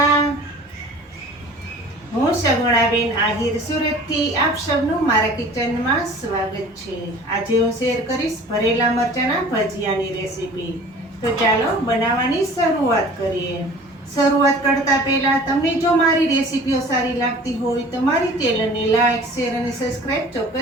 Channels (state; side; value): normal; both; correlation 0.45